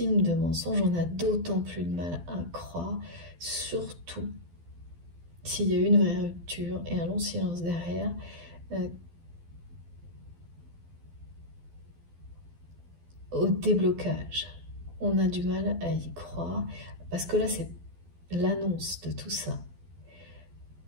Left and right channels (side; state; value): left; late; 12 ms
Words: de mensonges, on a d'autant plus de mal à croire, surtout s'il y a eu une vraie rupture et un long silence derrière, au déblocage. On a du mal à y croire, parce que là, c'est l'annonce de tout ça